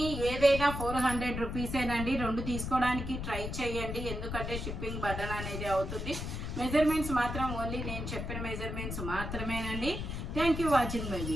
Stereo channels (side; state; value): left; noise; rumble, 5 dB below the sound